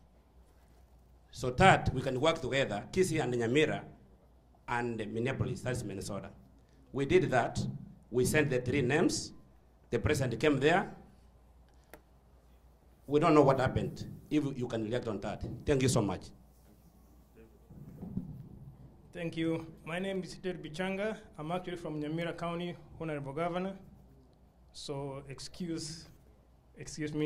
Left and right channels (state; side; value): identical; both; correlation 1.00